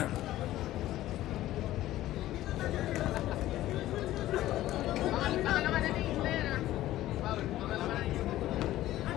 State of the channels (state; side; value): quieter; right; 14.8 dB